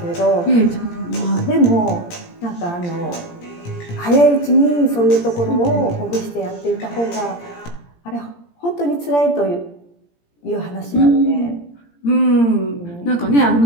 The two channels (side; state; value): right; late; 17 ms